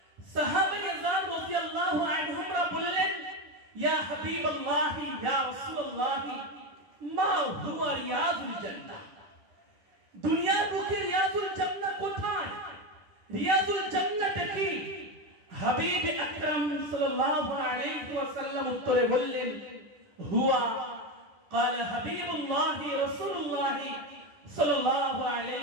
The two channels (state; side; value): late; left; 10 ms